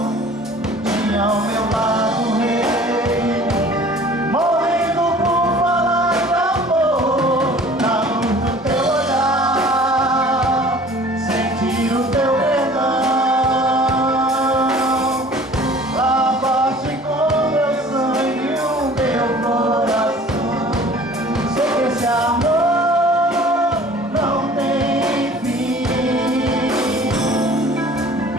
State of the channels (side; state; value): both; normal; correlation 0.48